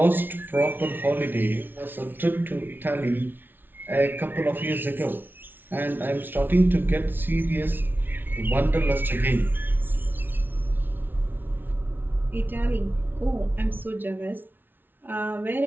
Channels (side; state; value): left; late; 0.096 ms